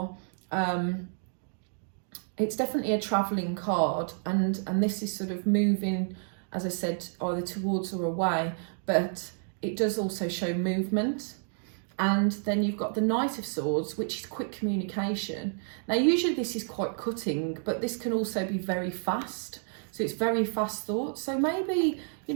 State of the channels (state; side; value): silent; left; 58 dB below the other